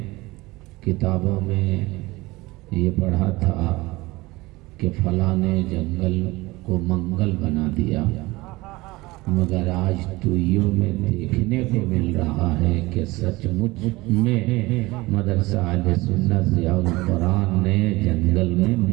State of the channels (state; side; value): quieter; left; 21.0 dB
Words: کتابوں میں یہ پڑھا تھا کہ فلاں نے جنگل کو منگل بنا دیا، مگر آج توئیوں میں دیکھنے کو مل رہا ہے کہ سچ مچ میں مدرسہ اہل سنت ضیاء القرآن نے جنگل میں